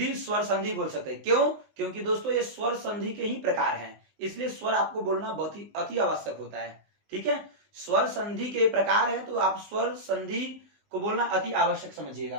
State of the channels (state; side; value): late; left; 19 ms